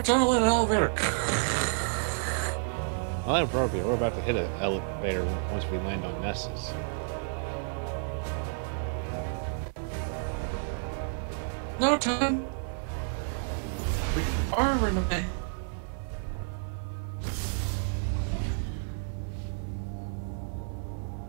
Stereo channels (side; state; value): left; silent; 58 dB below the other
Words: tunnel in an elevator. Well, inappropriate. We're about to hit an elevator once we land on Nessus. No time. We are running away.